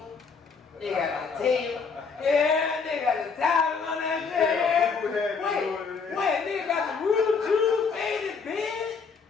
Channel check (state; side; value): quieter; right; 5.2 dB